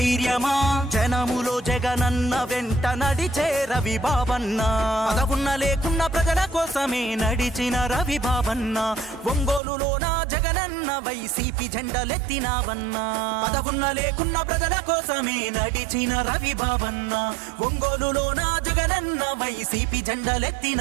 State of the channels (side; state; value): left; drops out; at 9.6 s